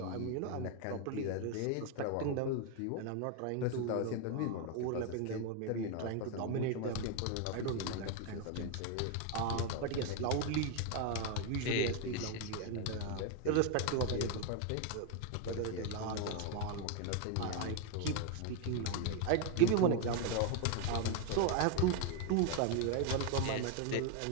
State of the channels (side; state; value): both; different; correlation 0.01